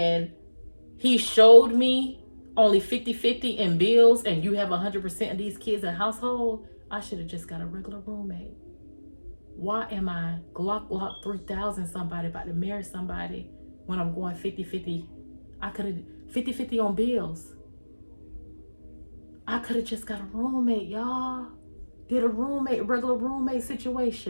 he showed me only 50-50 in bills and you have 100% of these kids in household, I should have just got a regular roommate. Why am I Glock 3000 somebody about to marry somebody when I'm going 50-50? I could have 50-50 on bills. I could have just got a roommate, y'all. Did a regular roommate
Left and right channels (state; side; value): inverted; both; correlation -1.00